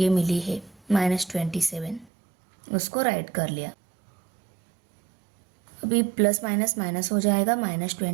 मिली है -27, उसको राइट कर लिया। अभी प्लस माइनस माइनस हो जाएगा,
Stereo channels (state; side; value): drops out; left; at 2.1 s